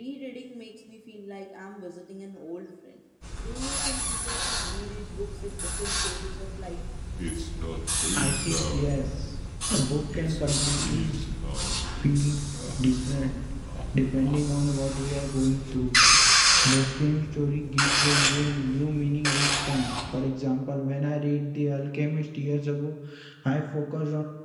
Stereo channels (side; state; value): both; identical; correlation 1.00